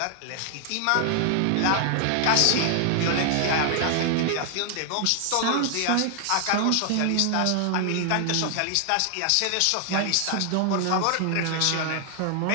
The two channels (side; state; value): both; different; correlation 0.00